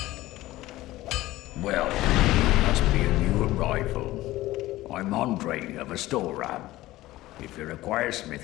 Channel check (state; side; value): quieter; right; 17.0 dB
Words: Well, must be a new arrival. I'm Andre of Astora. If you require